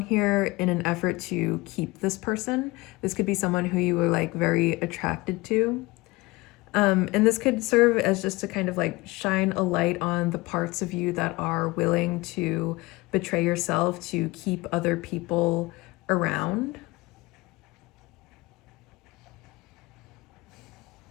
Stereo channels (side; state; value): right; quieter; 22.3 dB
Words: in an effort to keep this person. This could be someone who you were like very attracted to. And this could serve as just to kind of like shine a light on the parts of you that are willing to betray yourself to keep other people around.